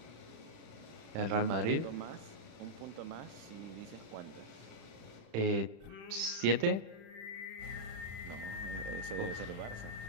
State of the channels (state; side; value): late; left; 36 ms